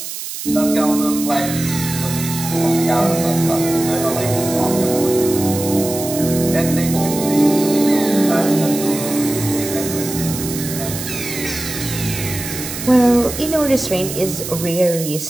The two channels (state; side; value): noise; right; hiss, 8 dB below the sound